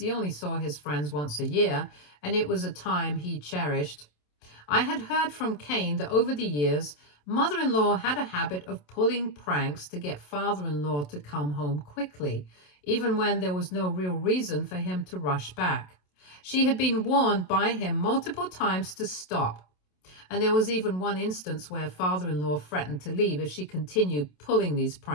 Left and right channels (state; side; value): late; right; 27 ms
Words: only saw his friends once a year, and it was a time he cherished. I had heard from Kane that over the years, mother-in-law had a habit of pulling pranks to get father-in-law to come home quickly, even when there was no real reason for him to rush back. She had been warned by him multiple times to stop, and there was even one instance where father-in-law threatened to leave if she continued pulling these